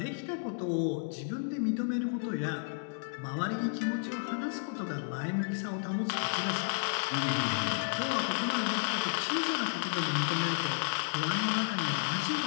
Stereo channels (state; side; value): silent; right; digital silence